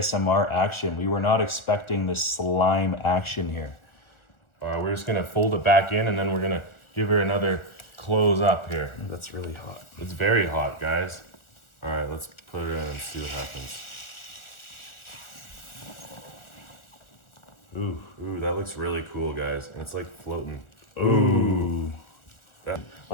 action. We were not expecting this slime action here. All right, we're just gonna fold it back in and then we're gonna give her another close up here. That's really hot. It's very hot, guys. All right, let's put it in and see what happens. Ooh, that looks really cool, guys. And it's like floating. Ooh. Yeah.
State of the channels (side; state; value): right; late; 1.4 ms